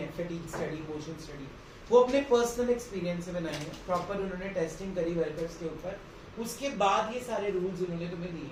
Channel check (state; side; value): identical; both; correlation 1.00